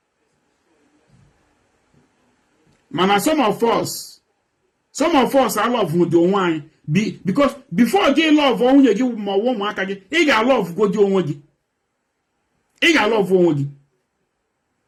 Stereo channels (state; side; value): identical; both; correlation 1.00